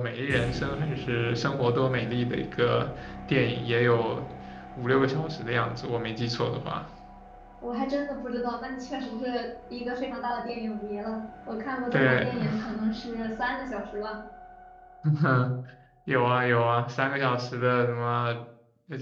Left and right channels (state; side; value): identical; both; correlation 1.00